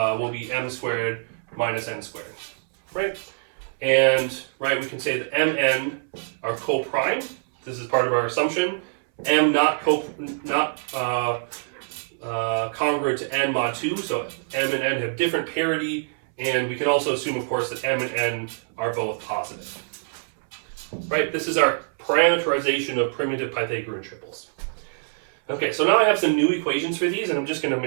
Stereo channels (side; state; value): left; silent; 62 dB below the other